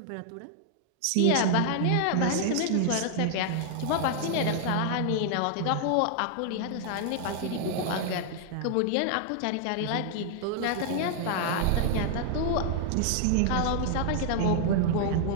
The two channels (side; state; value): both; different; correlation 0.00